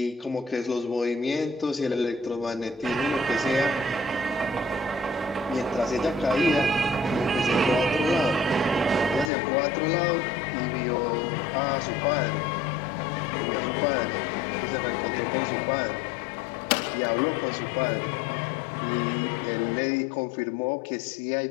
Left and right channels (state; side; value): drops out; right; at 9.3 s